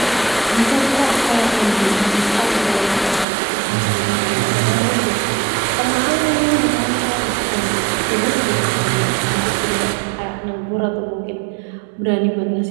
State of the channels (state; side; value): drops out; left; at 3.2 s